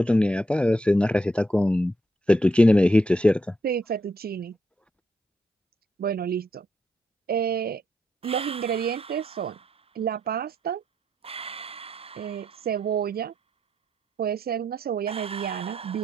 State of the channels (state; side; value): normal; both; correlation 0.78